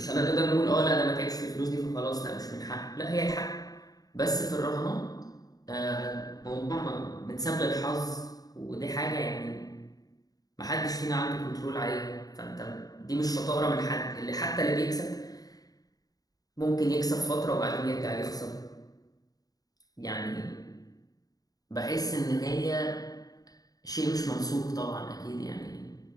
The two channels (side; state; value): right; late; 0.18 ms